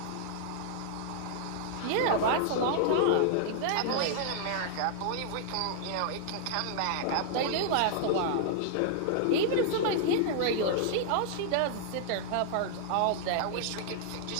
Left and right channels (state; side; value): different; both; correlation -0.01